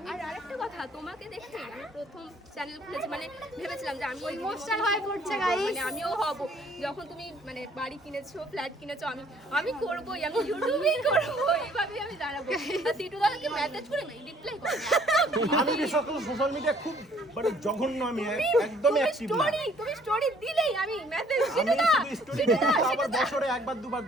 আর আরেকটা কথা, তোমাকে দেখে আমি প্রথম চ্যানেল খুলেছি, মানে ভেবেছিলাম যে আমি ইমোশনাল হয়ে পড়ছে গাইস। মানে আমিও হব। যখন তুমি মানে বাড়ি কিনেছো, ফ্ল্যাট কিনেছো, আমি করবোই, আমি ইউটিউবেই করবো, এইভাবেই আমি দাঁড়াবো। আর সিটু দাদাকে মেসেজ করে রিপ্লাই করো। আমি বিশেষ করে সোশ্যাল মিডিয়া খুব মানে জঘন্য, আমি একদমই অ্যাক্টিভ না। তুমি স্টোরি দিলেই আমি মেসেজ আমি শুধু স্টোরি দিই, আবার বছরে একবার দুবার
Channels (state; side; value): normal; both; correlation 0.60